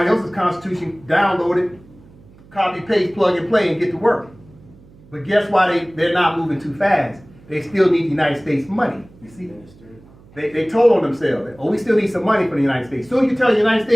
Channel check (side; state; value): right; noise; hum, 25 dB below the sound